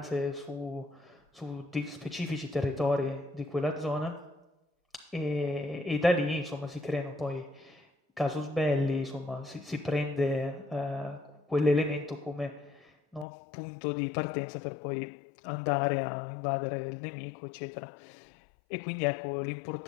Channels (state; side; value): drops out; right; at 13.2 s